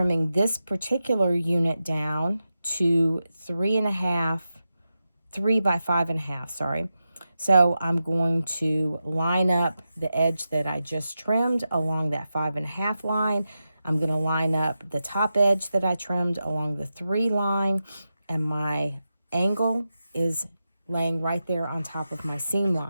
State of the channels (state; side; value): inverted; both; correlation -0.90